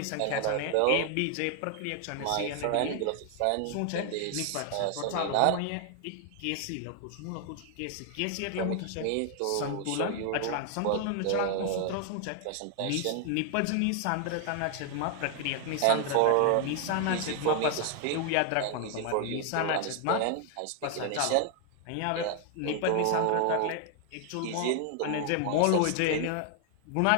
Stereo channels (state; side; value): different; both; correlation 0.00